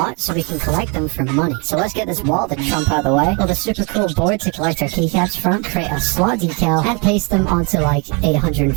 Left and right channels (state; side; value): quieter; left; 30.2 dB